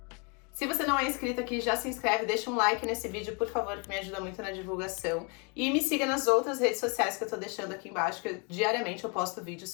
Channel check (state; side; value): quieter; right; 33.6 dB